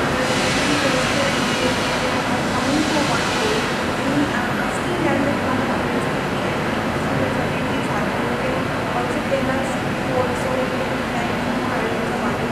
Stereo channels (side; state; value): left; noise; hum, 18 dB below the sound